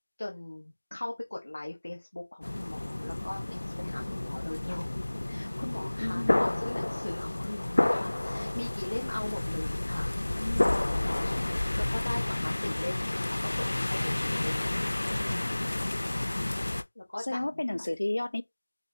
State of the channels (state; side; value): inverted; both; correlation -1.00